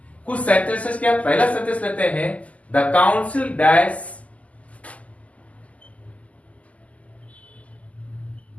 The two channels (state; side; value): late; right; 0.070 ms